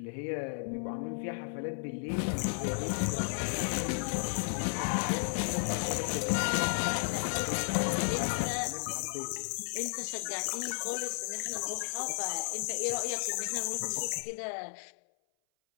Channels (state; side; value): silent; right; 55 dB below the other